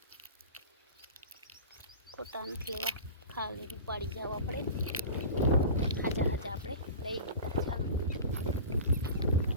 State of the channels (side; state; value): both; inverted; correlation -0.34